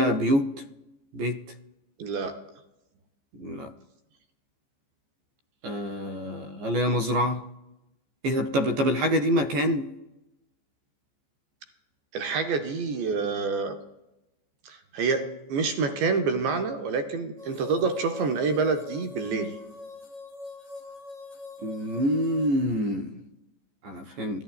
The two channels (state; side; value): late; left; 14 ms